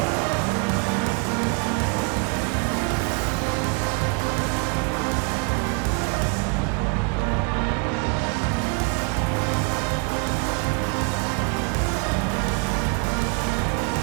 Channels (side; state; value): left; quieter; 37.5 dB